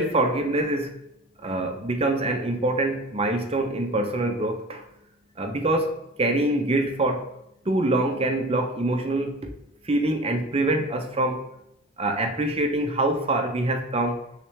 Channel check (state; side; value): normal; both; correlation 0.36